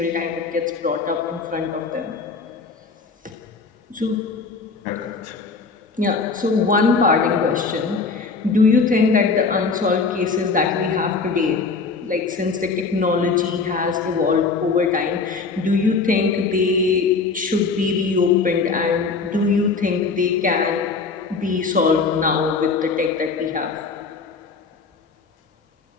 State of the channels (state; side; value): quieter; right; 4.5 dB